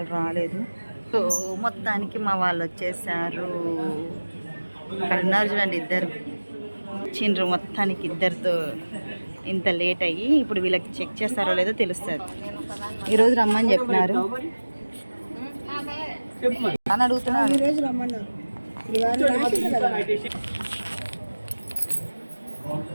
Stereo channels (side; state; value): both; inverted; correlation -1.00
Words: రాలేదు. సో మొత్తానికి మా వాళ్ళు వచ్చేసారు. ఇక్కడ ఉన్నారు చూడండి, ఇద్దరు చిండ్రు. మొత్తానికి ఇద్దరితో ఇంత లేట్ అయ్యి ఇప్పుడు వీళ్ళకి చెక్ చేస్తారో లేదో తెలుస్తుంది. ఈరోజు రమ్మని చెప్పినారు అని అడుగుతున్నారు. ఈరోజు రమ్మన్నారు.